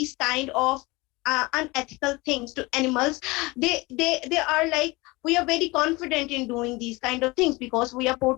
kind of unethical things to animals, they are like we are very confident in doing these kind of things because we are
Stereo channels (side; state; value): right; quieter; 23.3 dB